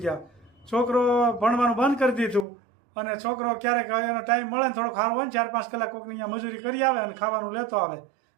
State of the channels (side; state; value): left; drops out; at 2.5 s